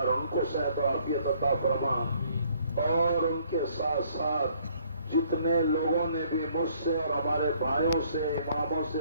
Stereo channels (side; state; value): both; inverted; correlation -0.63